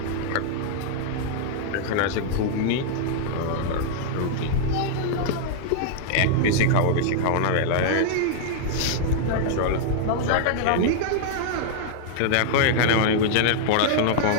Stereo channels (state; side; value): different; both; correlation -0.01